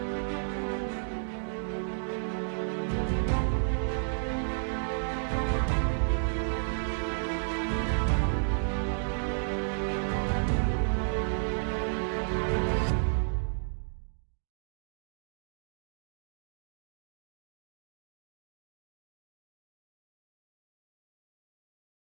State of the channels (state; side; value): silent; left; digital silence